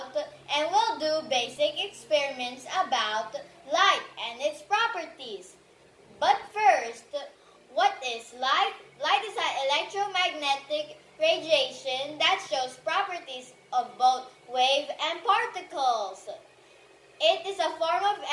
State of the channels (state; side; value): identical; both; correlation 1.00